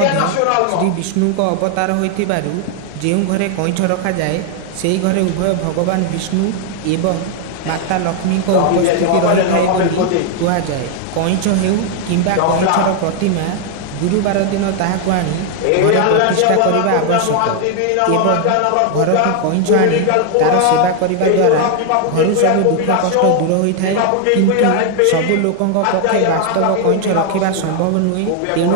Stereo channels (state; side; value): different; both; correlation 0.00